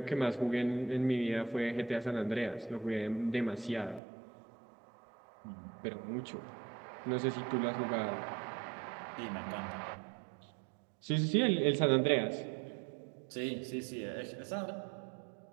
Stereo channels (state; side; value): drops out; left; at 4.0 s